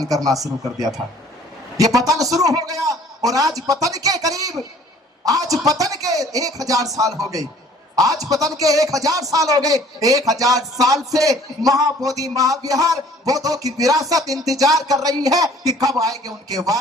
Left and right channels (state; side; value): normal; both; correlation 0.54